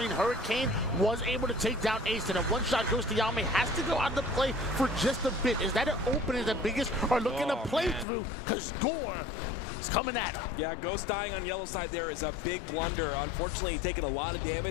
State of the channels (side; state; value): right; drops out; at 8.1 s